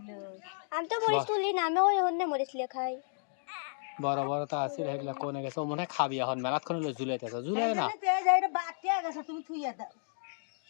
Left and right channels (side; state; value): right; silent; digital silence